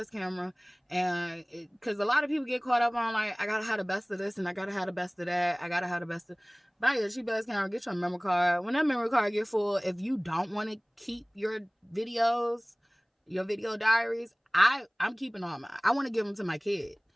And because a lot of people get caught up on, like, I gotta have the best of this and I gotta have the best of that. Buy you a cheap ass camera, get your memory card. When that memory card get full, if you don't want to keep your videos, your video diaries, I'm keeping all mine. I want to give them to my kid.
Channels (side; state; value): both; identical; correlation 1.00